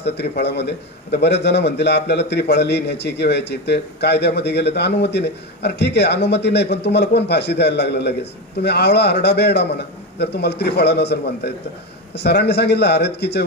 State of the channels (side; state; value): both; normal; correlation 0.16